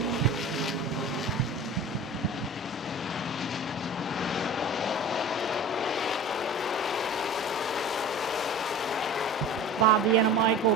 Bob the Animal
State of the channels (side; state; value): both; normal; correlation 0.37